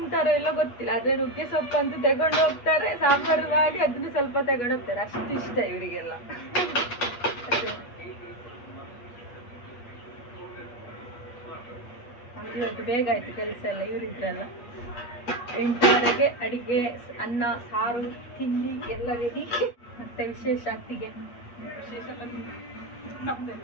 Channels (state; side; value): late; right; 8.3 ms